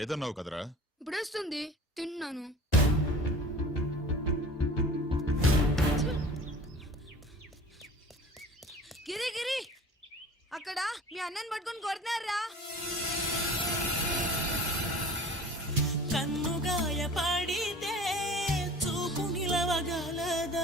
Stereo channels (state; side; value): normal; both; correlation 0.42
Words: కదరా? ఇప్పుడేస్తుంది, తిన్నాను. గిరి గిరి, అక్కడ మీ అన్నని పట్టుకొని కొడుతున్నారా? కన్నుగాయ పడితే చూపు